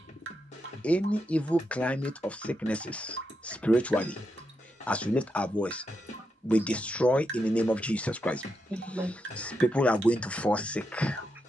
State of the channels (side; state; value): both; normal; correlation 0.84